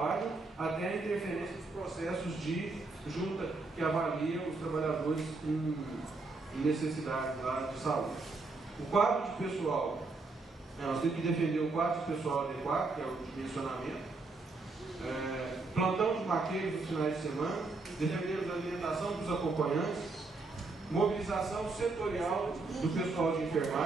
até a interferência dos processos de junta que avalia os trabalhadores em necessidades lá de saúde. O quadro de pessoal, nós temos que defender o quadro de pessoal adequado, que é o dimensionamento, plantão de maqueiros nos finais de semana, defender a alimentação dos acompanhantes, mobilização setorial do pessoal de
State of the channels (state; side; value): quieter; left; 3.6 dB